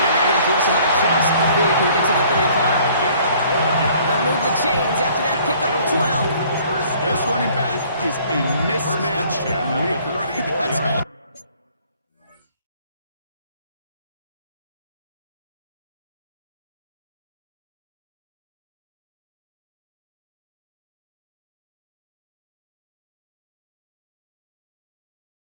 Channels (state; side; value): inverted; both; correlation -0.57